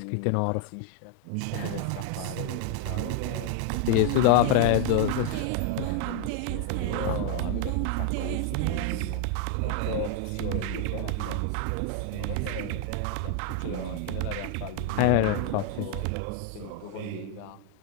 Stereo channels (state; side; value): different; both; correlation 0.00